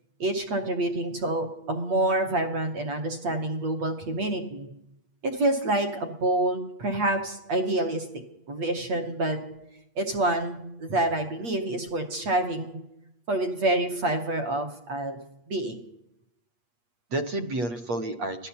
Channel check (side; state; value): left; late; 8.4 ms